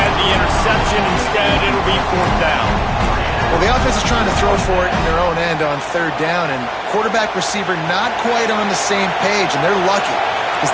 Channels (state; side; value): identical; both; correlation 1.00